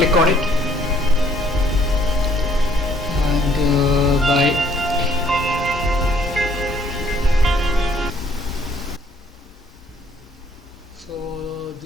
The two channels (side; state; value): both; normal; correlation 0.63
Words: on it and so